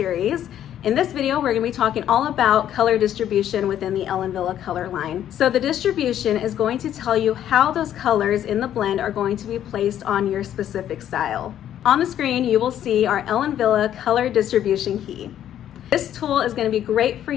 In this video, we're going to be talking all about color distribution within the Ellen Wille Color line. So the distribution is going to tell you how those colors in the blend are going to be placed on your specific style. On the screen, you will see our Ellen Wille Color Distribution Key. This tool is going to be great for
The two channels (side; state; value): right; quieter; 10.9 dB